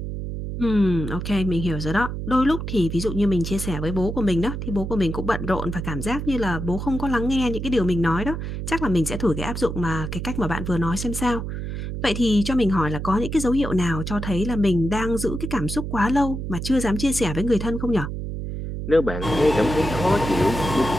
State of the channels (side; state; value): right; noise; hum, 5 dB below the sound